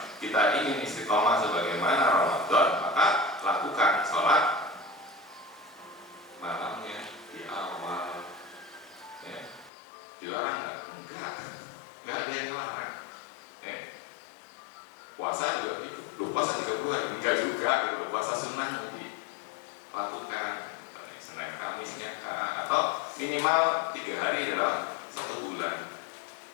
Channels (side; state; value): right; drops out; at 9.7 s